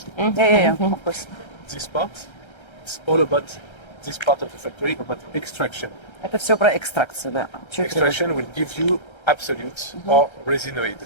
Yeah, of course. This part, it's all about this part of the factory, about extraction. Это все про экстракцию, да. Extraction will give you absolute or resinoid.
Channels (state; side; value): late; right; 1.3 ms